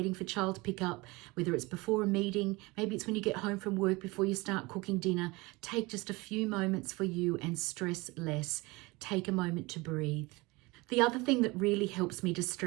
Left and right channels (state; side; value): quieter; left; 23.8 dB